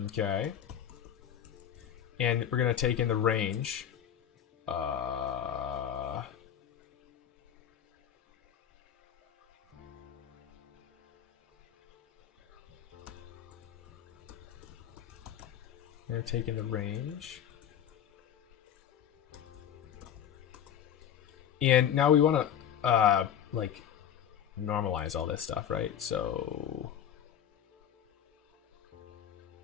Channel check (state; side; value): quieter; right; 9.5 dB